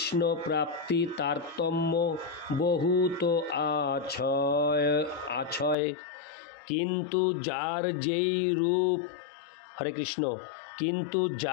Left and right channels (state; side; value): drops out; right; at 5.8 s